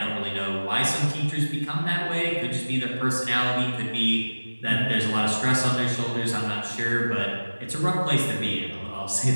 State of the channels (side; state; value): both; inverted; correlation -1.00